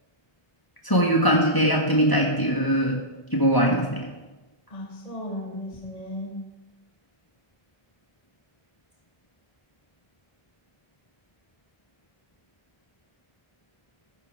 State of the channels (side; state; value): right; late; 1.0 ms